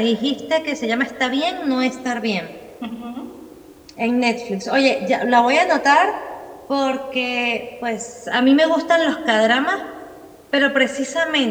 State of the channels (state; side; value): identical; both; correlation 1.00